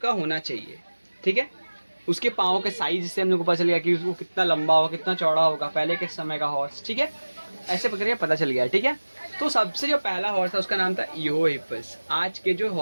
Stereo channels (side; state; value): both; inverted; correlation -1.00